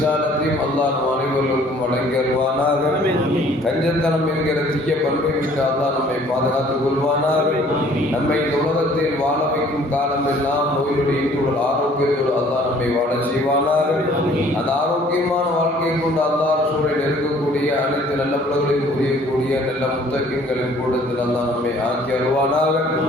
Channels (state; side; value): normal; both; correlation 0.56